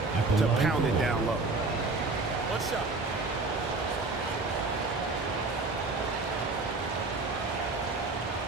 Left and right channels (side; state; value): left; quieter; 3.5 dB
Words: to pound it down low. What's up?